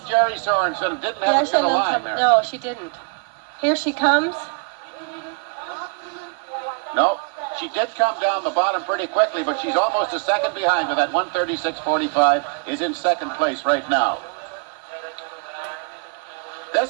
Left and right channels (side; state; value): left; quieter; 37.7 dB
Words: Jerry Sorensen. Didn't have a good line there. No, she didn't. Here she comes. No. She did come down the bottom pretty quickly, but she's almost a second behind her. That 1:36.45 is in second place right now.